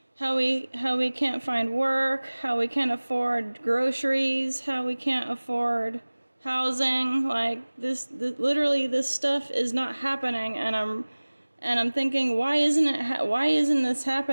how we can't find work, how we can't afford groceries, how we can't afford housing. Like, literally this stuff is not happening, and I'm thinking, why isn't this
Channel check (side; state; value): both; inverted; correlation -1.00